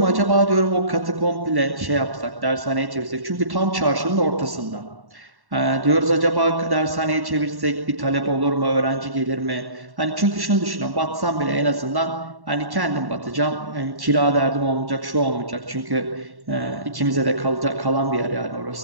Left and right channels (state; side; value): late; left; 1.1 ms